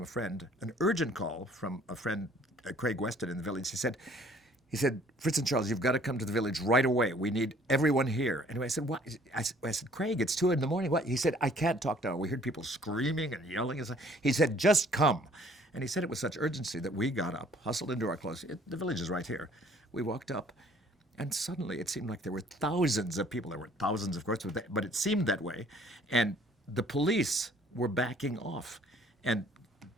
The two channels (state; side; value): normal; both; correlation 0.58